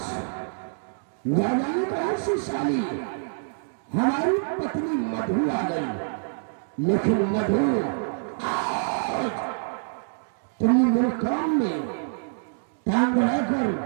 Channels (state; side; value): silent; left; digital silence